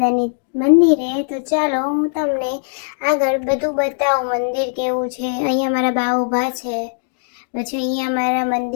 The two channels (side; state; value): right; silent; digital silence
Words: મંદિરે. તો ચાલો હું તમને આગળ બધું બતાવું મંદિર કેવું છે. અહીંયા મારા બા ઊભા છે, પછી અહીંયા મારા